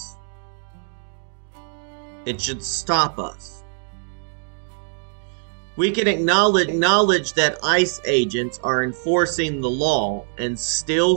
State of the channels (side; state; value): left; silent; digital silence